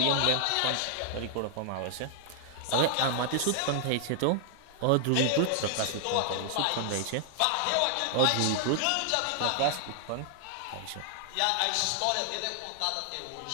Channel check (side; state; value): both; different; correlation 0.00